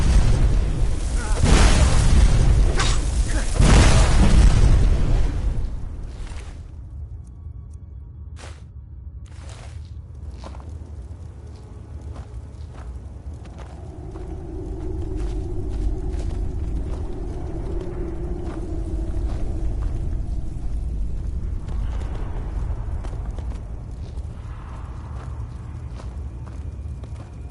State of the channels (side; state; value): both; identical; correlation 1.00